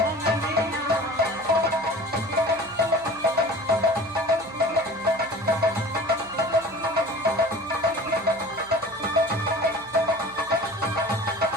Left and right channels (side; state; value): right; noise; hum, 25 dB below the sound